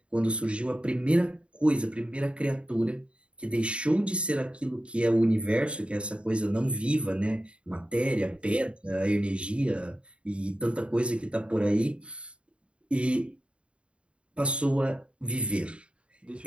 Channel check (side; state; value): left; late; 0.058 ms